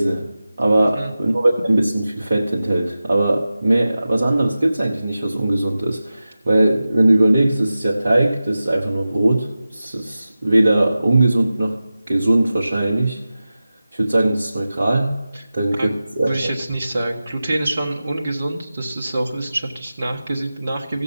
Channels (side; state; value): both; inverted; correlation -0.95